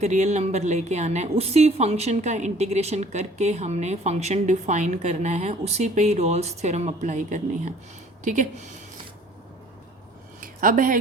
रियल नंबर लेके आना है उसी फंक्शन का इंटीग्रेशन करके हमने फंक्शन डिफाइन करना है, उसी पे ही रोल्स थ्योरम अप्लाई करनी है। ठीक है, अब है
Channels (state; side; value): normal; both; correlation 0.53